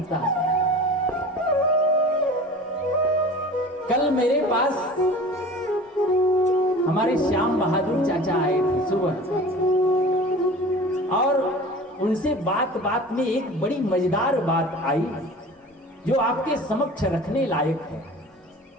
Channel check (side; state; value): both; normal; correlation 0.39